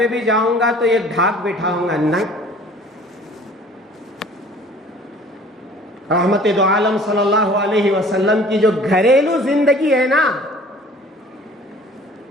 بھی جاؤں گا تو ایک ڈھاک بٹھاؤں گا. نہیں, رحمت دو عالم صلی اللہ علیہ وسلم کی جو گھریلو زندگی ہے نا,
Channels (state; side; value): normal; both; correlation 0.50